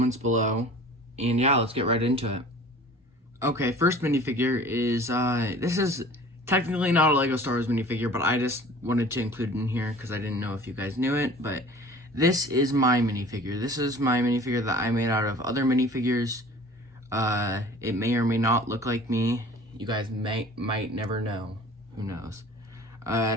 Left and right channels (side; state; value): both; normal; correlation 0.45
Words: below, and yeah, let's get right into it. Okay, first minifigure is this is technically not a Lego Star Wars minifigure, but I just wanted to include it in here because I didn't know if you guys knew it. But this is my minifigure. This is my minifigure that I made out of other minifigures. It may or may not look like me. You guys might never know. Who knows? It